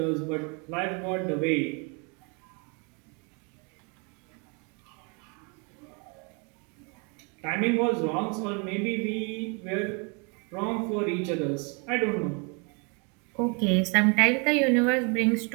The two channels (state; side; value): quieter; left; 33.7 dB